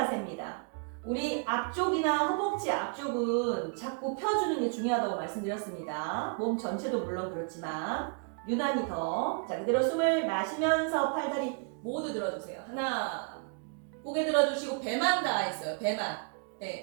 우리 앞쪽이나 허벅지 앞쪽은 자꾸 펴주는 게 중요하다고 말씀드렸습니다. 몸 전체도 물론 그렇지만 유난히 더. 자, 그대로 숨을 마시면서 팔다리 모두 들어주세요. 하나, 고개 들어주시고 배만 닿아있어요. 배만.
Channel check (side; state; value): left; quieter; 39.9 dB